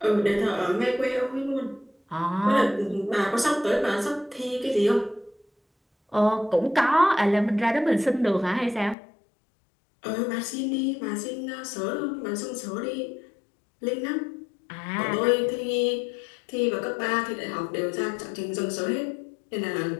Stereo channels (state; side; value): drops out; right; at 9.0 s